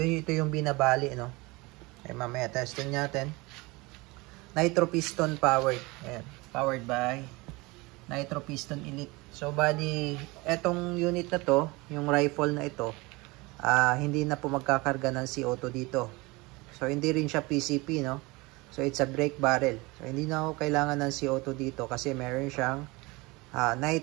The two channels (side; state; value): left; quieter; 23.8 dB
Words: yung binabali, no? Ay, mamaya testing natin. Nitro piston powered. Ayan. Powered by Nitro Piston Elite. So, bali, etong unit na to, yung rifle na ito, hindi na po magkakarga ng CO2 dito. So, hindi rin siya PCP, no? So, it's a brake barrel. So, hindi na ako kailangan ng CO2 dito kasi meron siyang